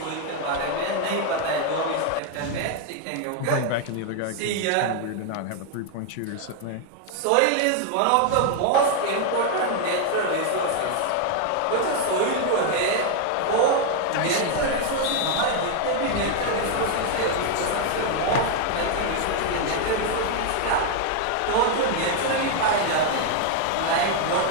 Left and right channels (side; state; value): both; different; correlation 0.00